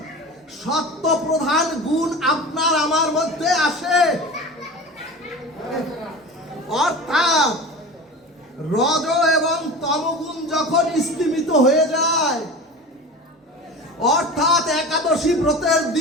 সত্য প্রধান গুণ আপনার আমার মধ্যে আসে, অর্থাৎ রজ এবং তমগুণ যখন স্তিমিত হয়ে যায়, অর্থাৎ একাদশী ব্রতের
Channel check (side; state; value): both; normal; correlation 0.33